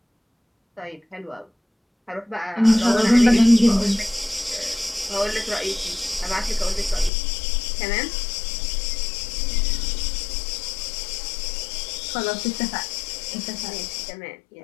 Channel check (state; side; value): drops out; right; at 7.1 s